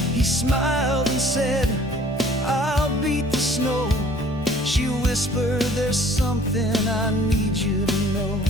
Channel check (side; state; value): both; normal; correlation 0.54